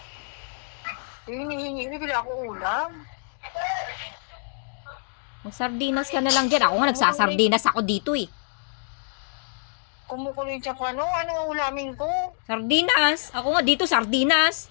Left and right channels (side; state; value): right; silent; digital silence